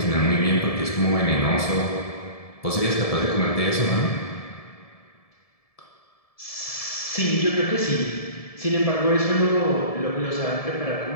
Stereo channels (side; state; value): right; late; 1.7 ms